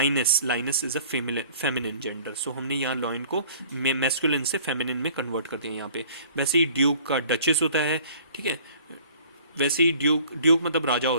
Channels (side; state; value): both; inverted; correlation -0.51